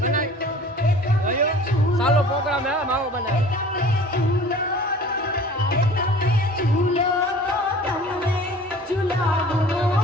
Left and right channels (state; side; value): normal; both; correlation 0.45